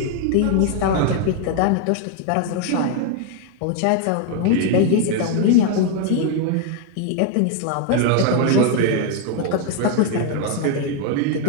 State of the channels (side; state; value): both; different; correlation 0.01